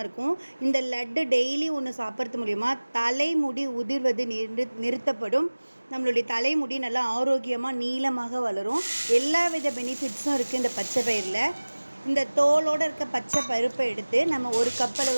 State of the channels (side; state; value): both; inverted; correlation -1.00